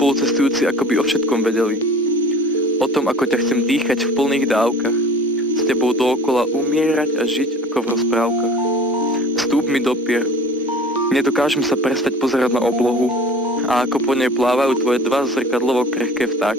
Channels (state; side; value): normal; both; correlation 0.44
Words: ako by o všetkom vedeli. O tom, ako ťa chcem dýchať v plných dávkach, s tebou dookola umierať a žiť ako v rozprávkach. Vstúp mi do pier. Nedokážem sa prestať pozerať na oblohu a ako po nej plávajú tvoje dva zrkadlovo krehké